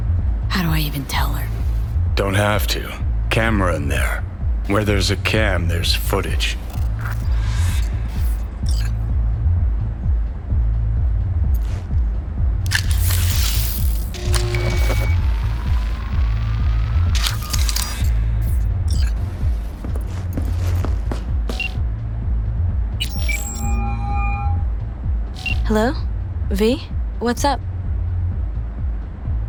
How do I even tell her? Don't have to. Camera in there. Where there's a cam, there's footage. Hello? V? What's up?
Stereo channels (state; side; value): identical; both; correlation 1.00